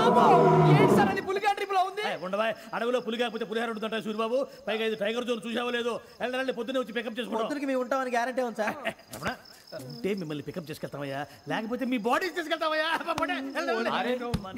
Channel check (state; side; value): identical; both; correlation 1.00